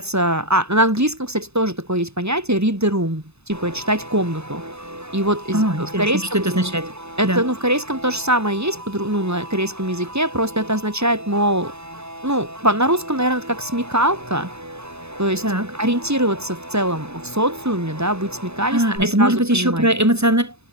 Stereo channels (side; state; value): left; late; 0.80 ms